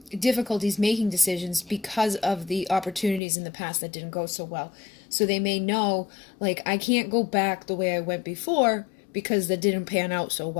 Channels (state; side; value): drops out; right; at 3.2 s